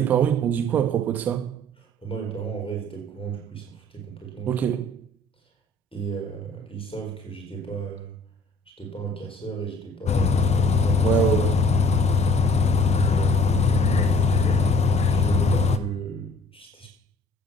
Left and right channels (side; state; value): both; normal; correlation 0.55